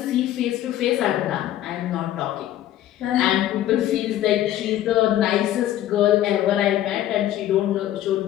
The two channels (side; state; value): right; quieter; 12.8 dB